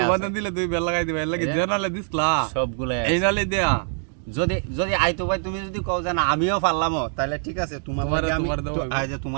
তোমাদের দিলে দুই বেল লাগাই দিবা, এর লাগি জানালে দিছলা সবগুলাই এই নালে দেয়া। যদি যদি আইতো ভাই তুমি যদি কও যে না আমিও পারলামও, তাহলে ঠিক আছে, তোমার আমি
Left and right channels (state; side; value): silent; left; 57 dB below the other